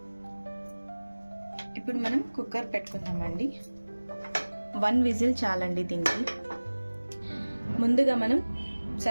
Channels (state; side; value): inverted; both; correlation -1.00